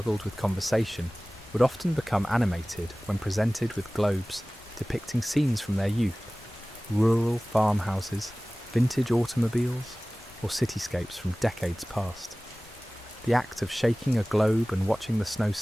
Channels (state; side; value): normal; both; correlation 0.98